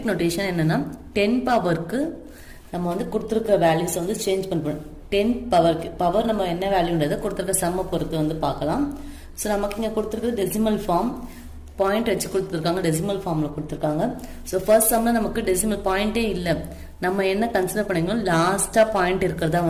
notation என்னன்னா 10 பவருக்கு நம்ம வந்து கொடுத்திருக்கிற வேல்யூஸ் வந்து சேஞ்ச் பண்ணணும். 10 பவருக்கு பவர் நம்ம என்ன வேல்யூன்றதை கொடுத்திருக்க சம்ம பொறுத்து வந்து பார்க்கலாம். ஸோ நமக்கு இங்கே கொடுத்துருக்குறது டெசிமல் ஃபார்ம் பாயிண்ட் வச்சு கொடுத்துருக்காங்க, டெசிமல் ஃபார்மில் கொடுத்துருக்காங்க. ஸோ ஃபர்ஸ்ட் சம்மில் நமக்கு டெசிமல் பாயிண்டே இல்லை. நம்ம என்ன கன்சிடர் பண்ணிக்கணும், லாஸ்ட்டாக பாயிண்ட் இருக்கிறதா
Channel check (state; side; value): identical; both; correlation 1.00